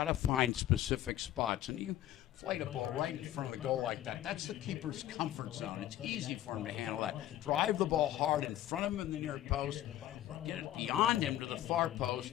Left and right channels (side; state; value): right; quieter; 13.3 dB